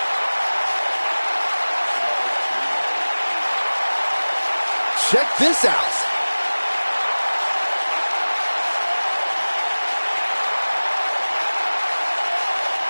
Check this out.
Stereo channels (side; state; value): both; inverted; correlation -1.00